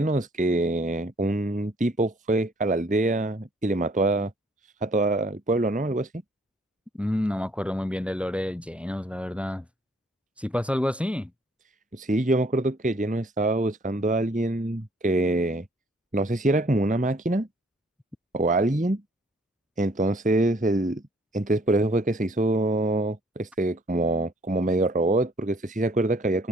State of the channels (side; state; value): both; normal; correlation 0.61